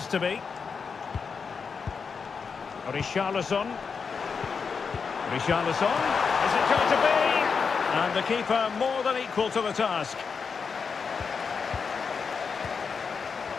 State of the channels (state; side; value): quieter; right; 5.6 dB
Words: to be. Richarlison. Richarlison. Is it going to be? And the keeper more than equal to the task.